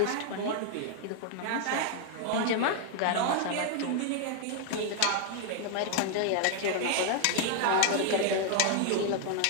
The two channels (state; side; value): different; both; correlation 0.00